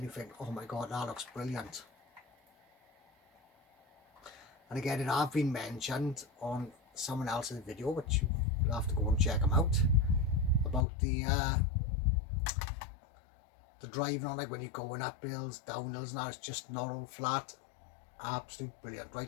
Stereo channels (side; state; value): right; drops out; at 10.9 s